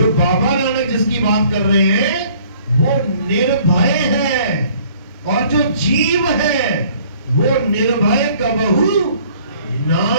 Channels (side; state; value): both; inverted; correlation -0.56